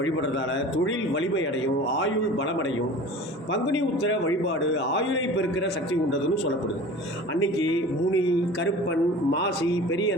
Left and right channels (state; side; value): normal; both; correlation 0.40